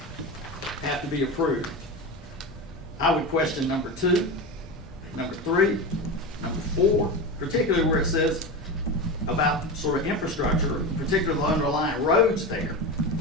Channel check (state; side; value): normal; both; correlation 0.23